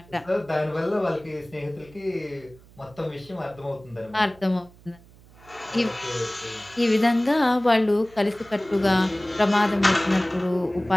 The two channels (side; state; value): right; noise; hum, 25 dB below the sound